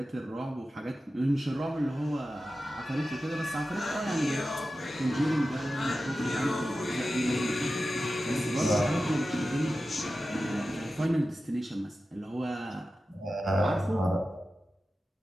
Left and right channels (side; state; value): both; normal; correlation 0.93